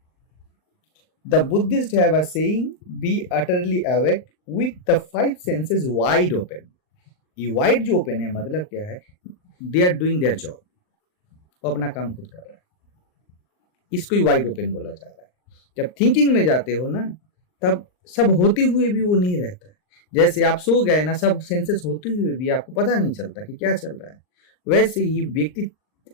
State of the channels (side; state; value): right; late; 39 ms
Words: the Buddhist have a saying, be utterly awake with the 5 senses wide open. ये वाइड जो ओपन है मतलब क्या है, they are doing their job, वो अपना काम खुद कर रहा है, इसको ही वाइड ओपन बोला जा रहा है। जब थिंकिंग में जाते हो ना, तब सब होते हुए भी वो नहीं रहता है। जैसे आप सो गए ना, सब सेंसेस होते हुए भी आपको पता नहीं चलता कि क्या चल रहा है, वैसे ही व्यक्ति